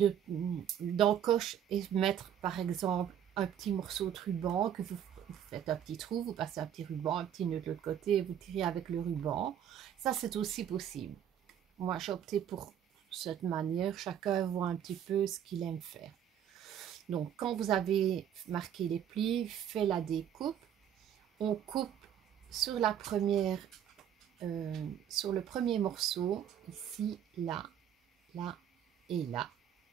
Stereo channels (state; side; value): quieter; left; 9.6 dB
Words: d'encoche et mettre par exemple un petit morceau de ruban que vous faites un petit trou, vous passez un petit ruban, un petit nœud de l'autre côté et vous tirez avec le ruban. Ça, c'est aussi possible. Moi, j'ai opté pour cette manière. Chacun voit un petit peu ce qu'il aime faire. Donc, quand vous avez marqué les plis, fait la découpe, on coupe sur la première, sur le premier morceau, ici, là, là et là.